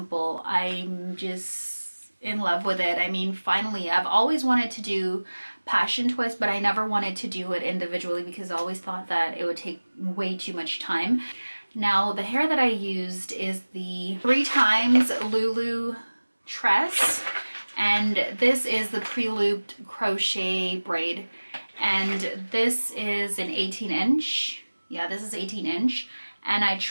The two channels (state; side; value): inverted; both; correlation -1.00